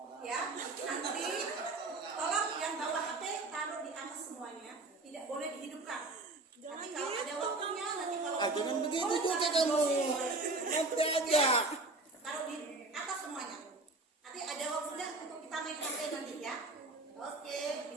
ya, nanti tolong yang bawa HP taruh di atas semuanya, tidak boleh dihidupkan. Nanti kalau ada waktunya, nanti kalau Jangan begitu juga kamu. Nanti aja. taruh di atas semuanya. Nanti ada waktunya untuk kita main HP nanti ya. Oke,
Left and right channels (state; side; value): quieter; left; 3.2 dB